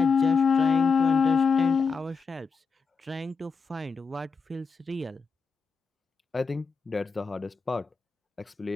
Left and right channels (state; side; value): quieter; right; 5.0 dB